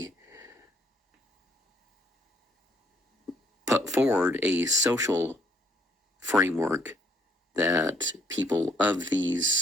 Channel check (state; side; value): normal; both; correlation 0.65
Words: put forward a social framework that people of